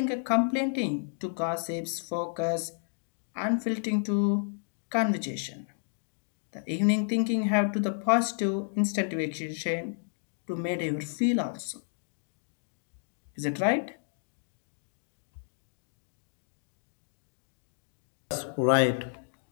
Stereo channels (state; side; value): silent; right; digital silence